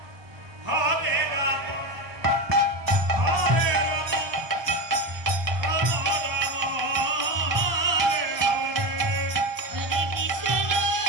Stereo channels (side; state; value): left; late; 1.2 ms